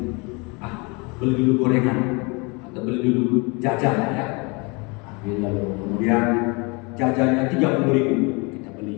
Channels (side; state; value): right; quieter; 29.2 dB